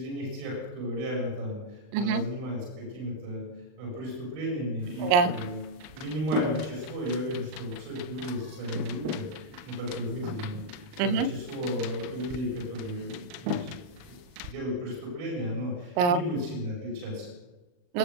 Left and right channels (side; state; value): left; late; 39 ms